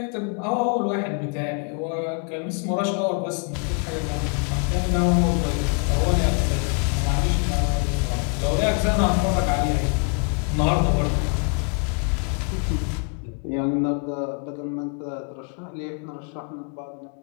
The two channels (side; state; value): right; quieter; 39.5 dB